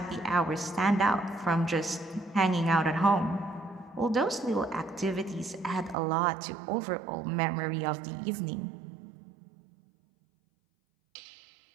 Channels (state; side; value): drops out; left; at 6.0 s